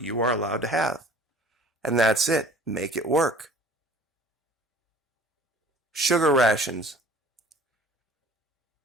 you are allowed to have. And that's it. Make it work. Sugar rations.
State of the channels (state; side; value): normal; both; correlation 0.49